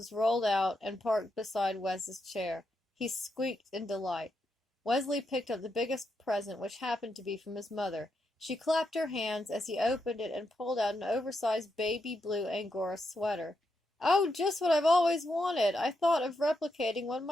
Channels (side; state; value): both; normal; correlation 0.83